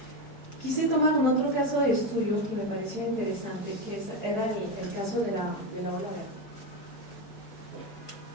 Quise tomar un otro caso de estudio que me parecía interesante, que era el caso de la ola verde.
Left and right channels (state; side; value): late; right; 4.7 ms